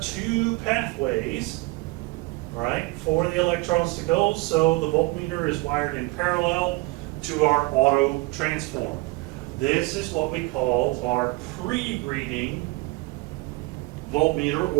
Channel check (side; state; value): left; quieter; 23.0 dB